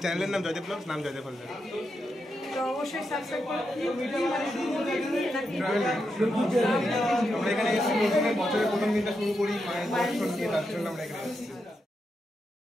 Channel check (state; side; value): normal; both; correlation 0.85